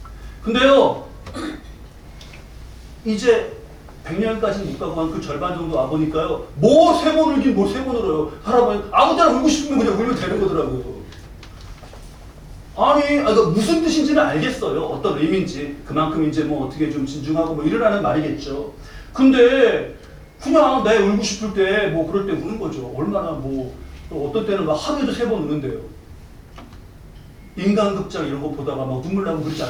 근데요 이제 100년까지는 못 가고 한 그 절반 정도 와보니까요 뭐 3번 울긴 뭐 3번 울어요. 할아버지 아무 때나 울고 싶으면 그냥 울면 되는 거더라고요. 아니 무슨 뜻인지는 알겠어요. 어떤 의미인지 그만큼 이제 뭐 어떻게 좀 진중하고 뭐 이러라는 말이겠죠. 근데 그냥 내 울고 싶을 때 뭐 그럴 때 우는 거죠. 얼마나 뭐 어떤 때는 막 하루에도 3번 우는데요. 인간극장 이런 거 보다가 막 눈물 나고 그러지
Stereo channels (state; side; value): identical; both; correlation 1.00